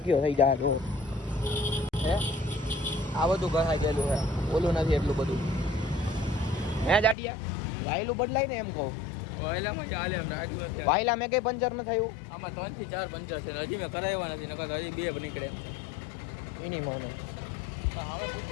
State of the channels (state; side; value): drops out; right; at 7.2 s